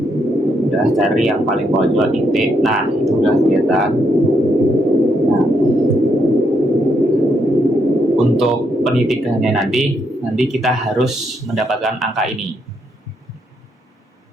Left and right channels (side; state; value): both; normal; correlation 0.77